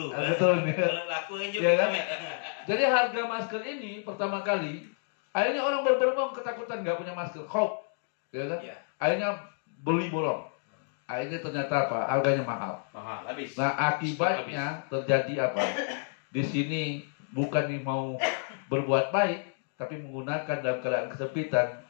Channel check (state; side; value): silent; right; 58 dB below the other